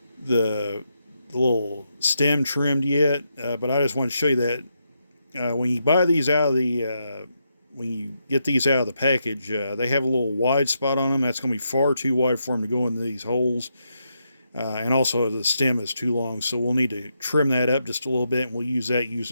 little stem trimmed yet, but I just want to show you that when you buy these out of the when you get these out of the package, they have a little wide spot on them. That's going to be far too wide for them to go into these holes. And also the stem is too long, so we'll need to trim that up just a little bit, and we'll use that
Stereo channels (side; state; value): both; inverted; correlation -0.82